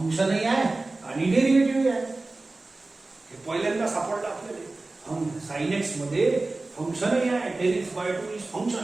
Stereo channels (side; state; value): left; quieter; 3.2 dB